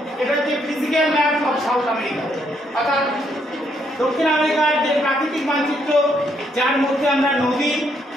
এটা হচ্ছে physical map of South America, অর্থাৎ দক্ষিণ আমেরিকার যে প্রাকৃতিক মানচিত্র, যার মধ্যে আমরা নদী,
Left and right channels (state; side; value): normal; both; correlation 0.73